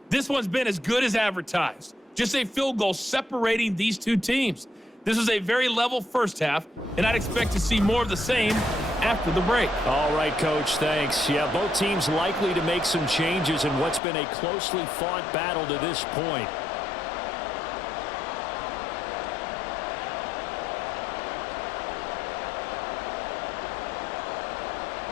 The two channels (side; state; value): right; drops out; at 14.0 s